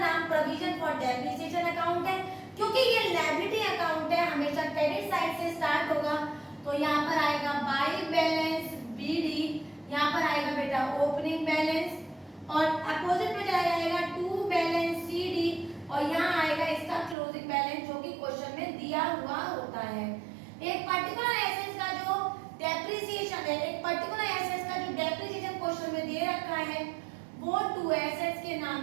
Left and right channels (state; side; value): drops out; left; at 17.2 s